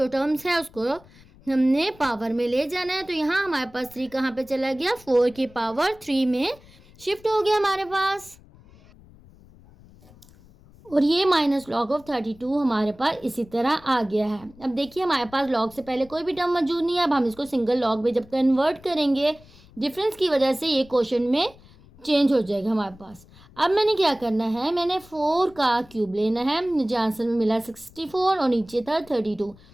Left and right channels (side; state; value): left; noise; rumble, 24 dB below the sound